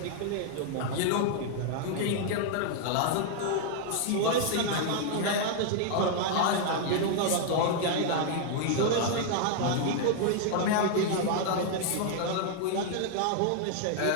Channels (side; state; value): both; different; correlation 0.00